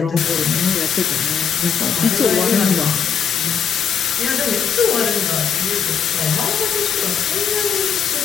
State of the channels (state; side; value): quieter; right; 7.2 dB